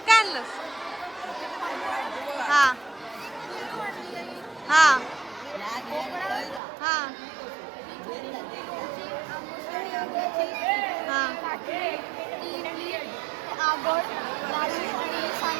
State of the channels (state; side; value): drops out; left; at 6.6 s